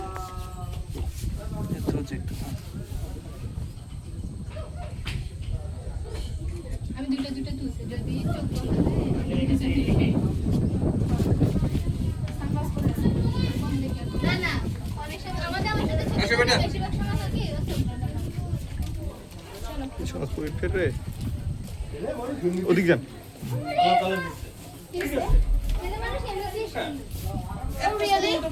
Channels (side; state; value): both; identical; correlation 1.00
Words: একটু একটু আমি দুটো তুলছি যদি চোখ না না অনেক সময় আমাদের বেশিরভাগ সময় থাকে সহজপুরি ফের রে ওদিক যান